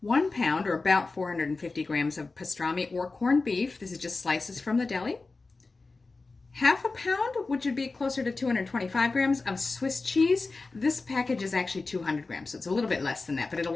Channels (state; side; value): quieter; right; 3.7 dB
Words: 1 pound or about 450 grams of pastrami or corned beef. This is just slices from the deli. Half a pound, which would be closer to 225 grams of Swiss cheese. This package is actually 200 grams, so it's a little bit less than that, but it'll